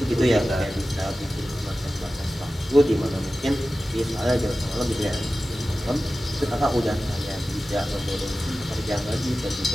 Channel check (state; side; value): normal; both; correlation 0.95